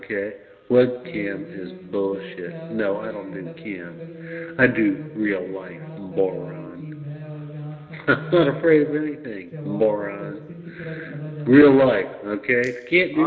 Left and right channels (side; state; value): both; identical; correlation 1.00